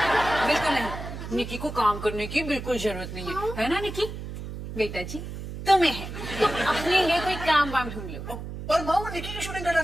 बिल्कुल नहीं, निकी को काम करने की बिल्कुल जरूरत नहीं है ना निकी? बेटा जी तुम्हें है, तुम अपने लिए कोई काम वाम ढूंढ लो। पर माँ वो निकी की शूटिंग करना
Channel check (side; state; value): right; noise; hum, 9 dB below the sound